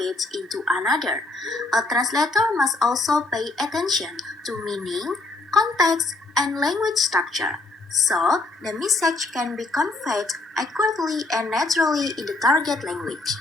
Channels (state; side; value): quieter; right; 3.1 dB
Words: into another. A translator must also pay attention to meaning, context, and language structure, so the message can be conveyed accurately and naturally in the target language.